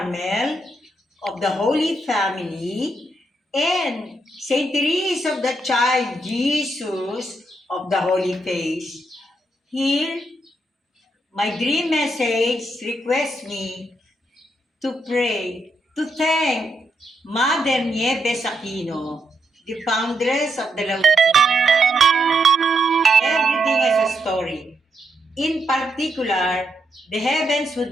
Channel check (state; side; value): normal; both; correlation 0.80